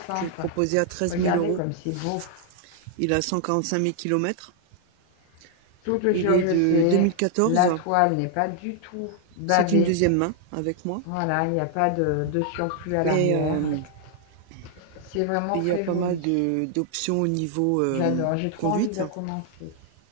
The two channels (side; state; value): both; different; correlation 0.00